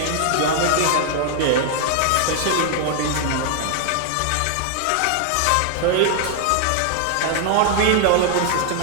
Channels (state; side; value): different; both; correlation 0.00